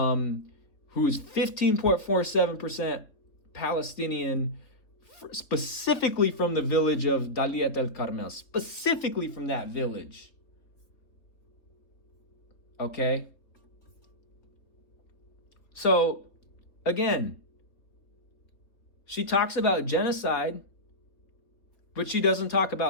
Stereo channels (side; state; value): right; late; 3.9 ms